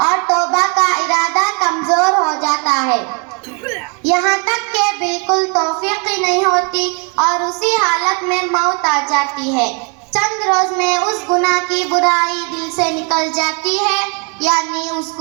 اور توبہ کا ارادہ کمزور ہو جاتا ہے، یہاں تک کہ بالکل توفیق ہی نہیں ہوتی اور اسی حالت میں موت آ جاتی ہے۔ چند روز میں اس گناہ کی برائی دل سے نکل جاتی ہے، یعنی اس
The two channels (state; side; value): quieter; left; 35.7 dB